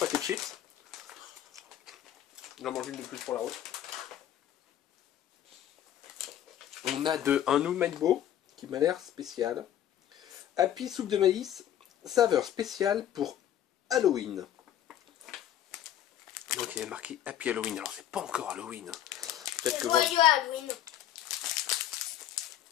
de chips. J'en mange une de plus pour la route. On a un Oumaibo qui m'a l'air spécial. Happy soupe de maïs, saveur spéciale pour Halloween. Donc il y a marqué Happy Halloween. Alors c'est pas encore Halloween. Peut-être que joyeux Halloween.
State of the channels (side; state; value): right; quieter; 11.3 dB